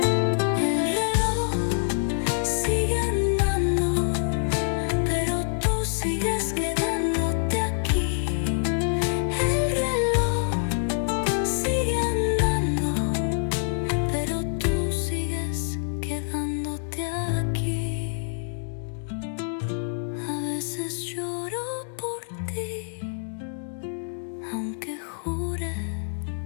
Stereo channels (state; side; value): silent; right; digital silence